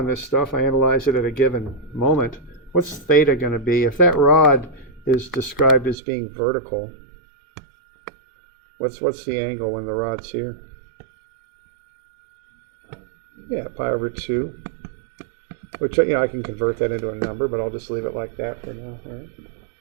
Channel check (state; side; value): drops out; left; at 6.0 s